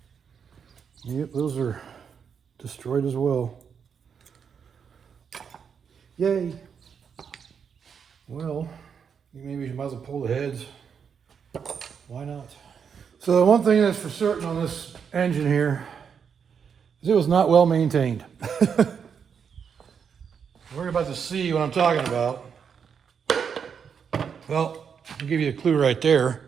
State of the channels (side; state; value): left; quieter; 6.9 dB